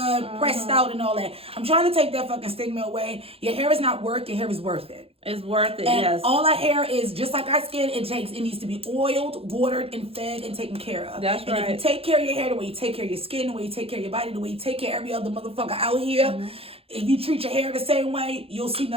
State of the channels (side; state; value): left; late; 0.28 ms